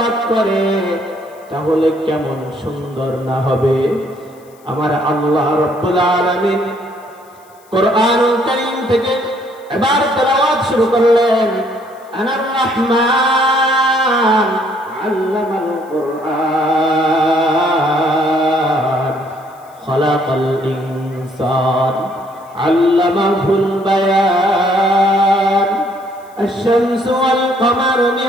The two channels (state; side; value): noise; left; hiss, 30 dB below the sound